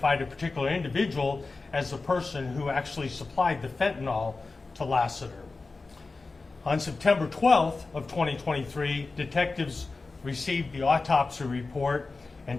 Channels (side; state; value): right; quieter; 3.8 dB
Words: a particular individual as the person who actually supplied the fentanyl to Lassiter. On September 12th of 2023, detectives received the autopsy report and